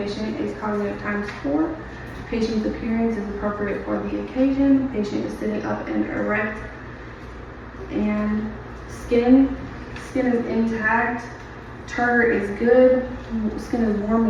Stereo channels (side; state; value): both; identical; correlation 1.00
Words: is cognitive times 4. Patient's appearance is appropriate for the occasion. Patient is sitting up and erect. And skin is intact. Turgor is good. Skin is warm